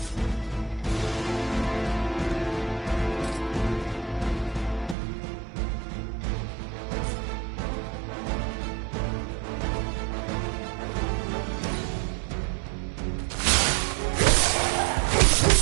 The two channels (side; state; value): left; drops out; at 5.0 s